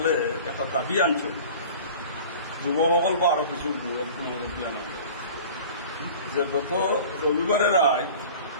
একটা দাবি আনছে। যুৱকসকল বা আরো কিছু মুরব্বী আনা যে গত রবিবারে রায়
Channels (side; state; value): both; inverted; correlation -0.41